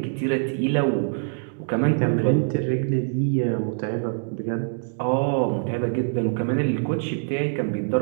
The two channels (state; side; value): silent; left; digital silence